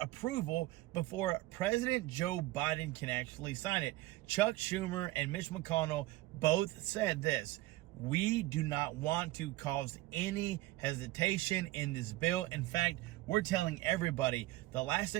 approval before President Joe Biden can actually sign it. Chuck Schumer and Mitch McConnell both said this: we do not want to cause any hesitation in this bill. In fact, we're telling everybody the last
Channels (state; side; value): quieter; left; 18.2 dB